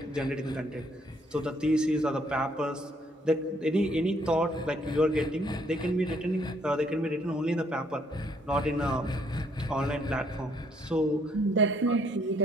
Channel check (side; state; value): both; normal; correlation 0.67